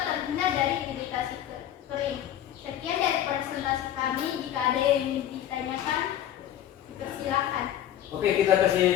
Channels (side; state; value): right; quieter; 11.2 dB